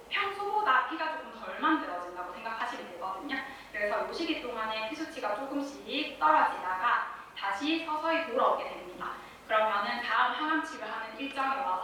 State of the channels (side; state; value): both; identical; correlation 1.00